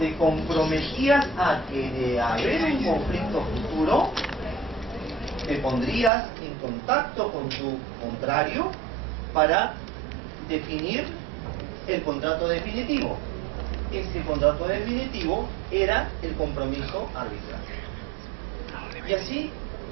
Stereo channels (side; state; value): left; drops out; at 6.1 s